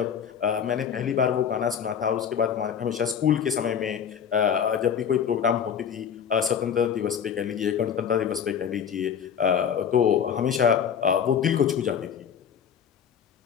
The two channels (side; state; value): right; quieter; 7.9 dB